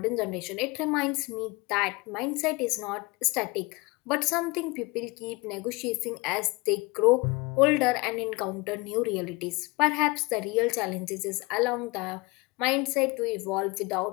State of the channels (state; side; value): quieter; right; 25.3 dB